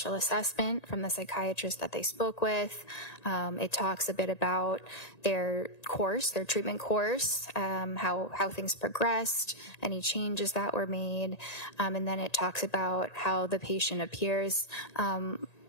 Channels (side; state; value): right; late; 1.9 ms